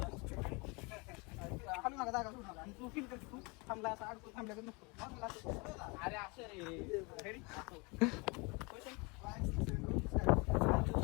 हलू नका जागा सोडू नका. आणि तू फील कर तू थांबला असं अडकून थांबल्याकडे नको. अरे असं रे. रेडी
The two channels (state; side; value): quieter; right; 28.9 dB